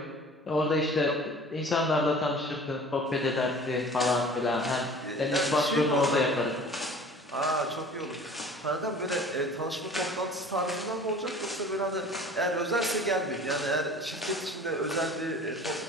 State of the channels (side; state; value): both; normal; correlation 0.45